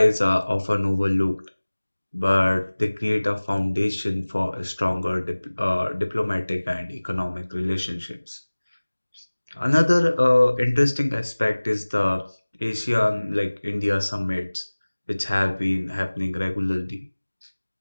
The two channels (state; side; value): inverted; both; correlation -1.00